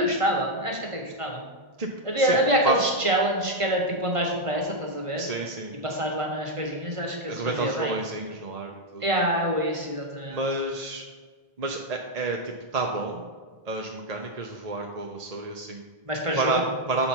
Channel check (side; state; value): left; late; 1.5 ms